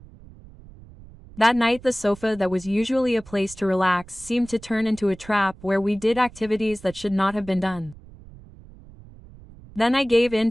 That night the sofa that was usually a place to relax seemed to turn into a trap where we did activities that should not have been done. Then I gave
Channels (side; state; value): right; noise; rumble, 20 dB below the sound